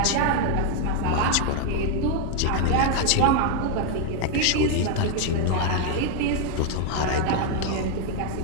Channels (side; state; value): both; different; correlation 0.00